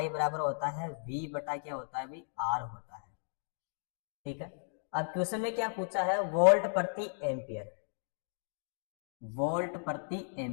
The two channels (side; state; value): right; silent; digital silence